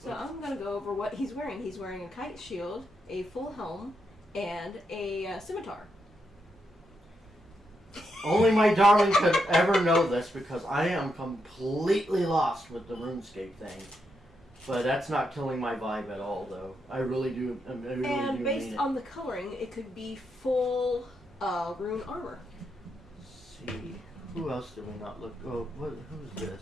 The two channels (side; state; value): both; normal; correlation 0.82